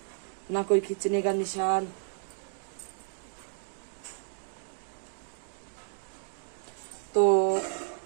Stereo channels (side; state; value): left; silent; digital silence